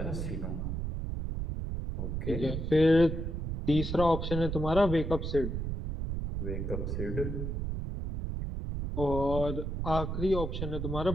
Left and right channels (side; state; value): right; noise; rumble, 3 dB below the sound